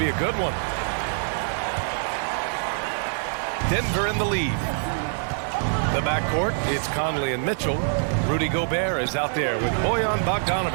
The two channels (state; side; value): silent; left; digital silence